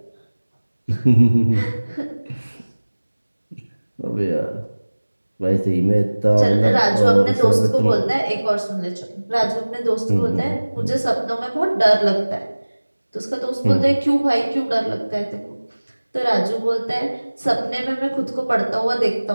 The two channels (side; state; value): both; inverted; correlation -1.00